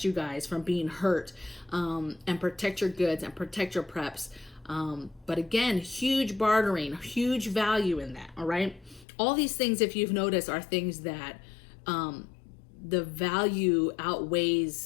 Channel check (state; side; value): drops out; right; at 9.1 s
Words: you guys from being hurt, and protect your goods and protect your preps. But again, huge bartering, huge value in that, all right? All these things, if you've noticed, are things that the value